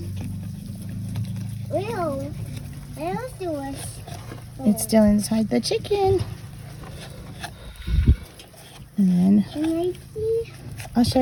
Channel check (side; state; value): both; identical; correlation 1.00